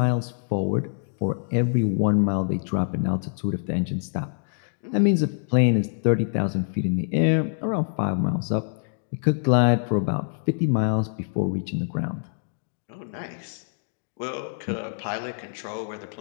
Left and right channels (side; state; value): right; silent; digital silence